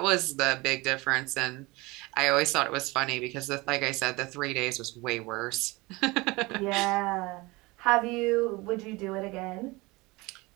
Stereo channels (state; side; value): quieter; left; 23.3 dB